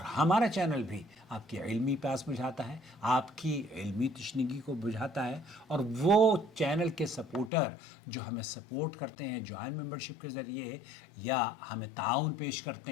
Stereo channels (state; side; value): drops out; right; at 7.5 s